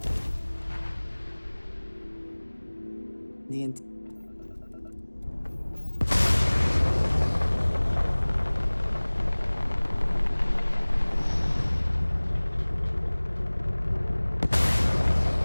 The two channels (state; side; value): inverted; both; correlation -1.00